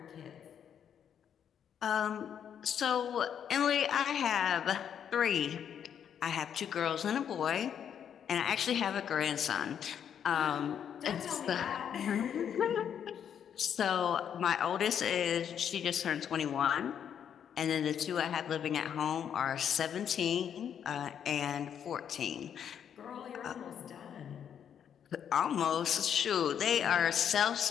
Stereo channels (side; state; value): right; quieter; 8.6 dB